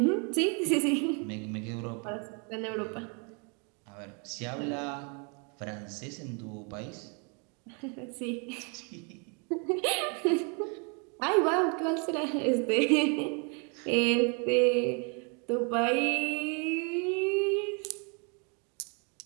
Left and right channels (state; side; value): quieter; left; 35.8 dB